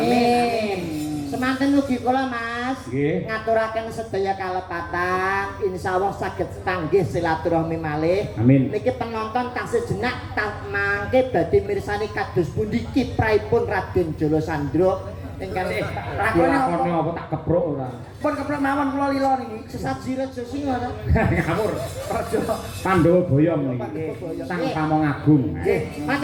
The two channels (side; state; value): both; identical; correlation 1.00